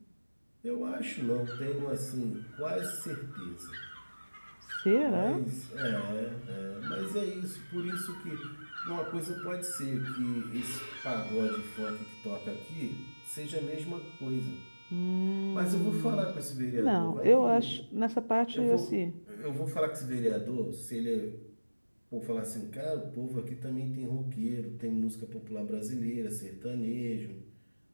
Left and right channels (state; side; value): inverted; both; correlation -1.00